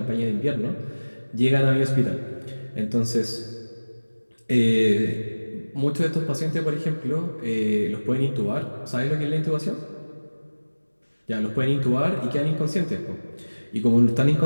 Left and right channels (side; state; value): both; inverted; correlation -1.00